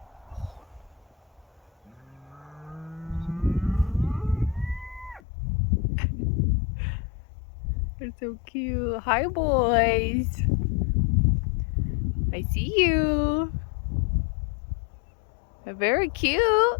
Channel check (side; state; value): right; drops out; at 5.2 s